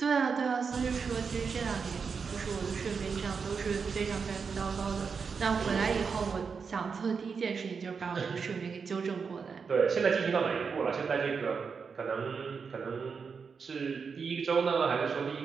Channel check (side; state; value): left; quieter; 5.6 dB